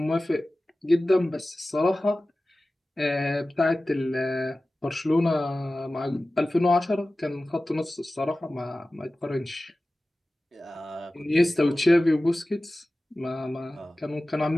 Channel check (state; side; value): normal; both; correlation 0.96